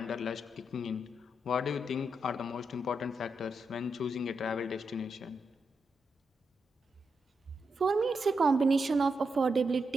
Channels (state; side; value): normal; both; correlation 0.84